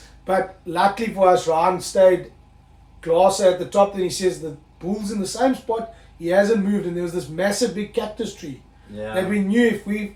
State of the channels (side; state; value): both; identical; correlation 1.00